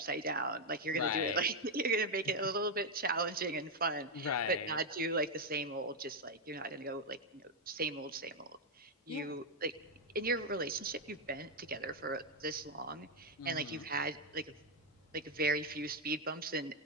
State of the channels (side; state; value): both; normal; correlation 0.01